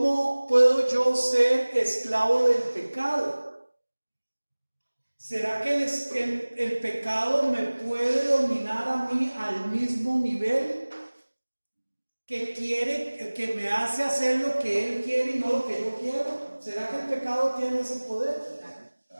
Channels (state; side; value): inverted; both; correlation -1.00